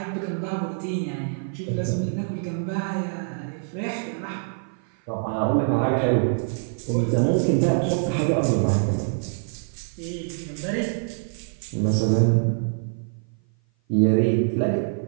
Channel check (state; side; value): silent; left; 56 dB below the other